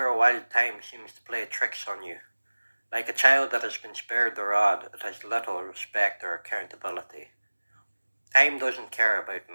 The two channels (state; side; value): inverted; both; correlation -1.00